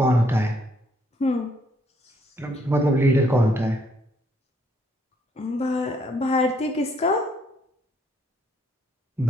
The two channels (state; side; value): normal; both; correlation 0.69